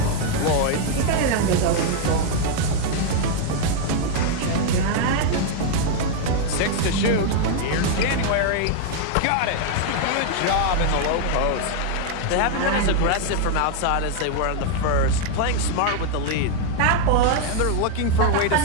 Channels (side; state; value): both; different; correlation 0.00